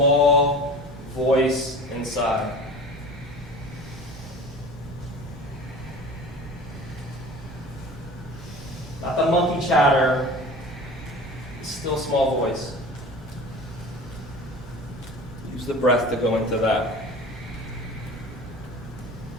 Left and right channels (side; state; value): both; normal; correlation 0.38